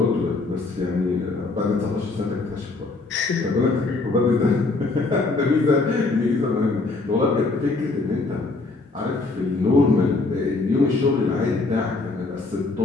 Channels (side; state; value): right; quieter; 3.6 dB